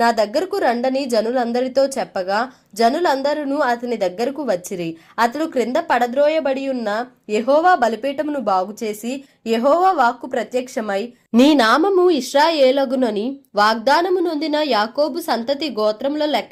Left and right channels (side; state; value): both; identical; correlation 1.00